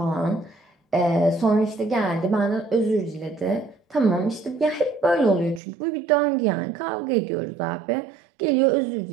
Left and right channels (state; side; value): drops out; left; at 5.6 s